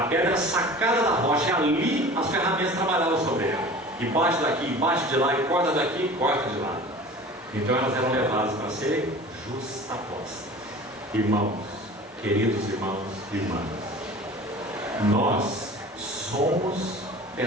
pedra sacada da rocha, e ali as ferramentas trabalhavam sobre ela. E bate daqui, bate de lá, e corta daqui, e corta de lá. Então elas eram levadas para serem justapostas. Irmãos, queridos irmãos e irmãs, nós somos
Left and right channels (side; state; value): both; normal; correlation 0.40